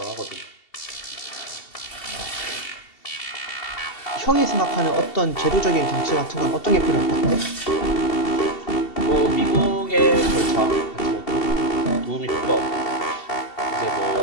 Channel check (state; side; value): late; right; 2.7 ms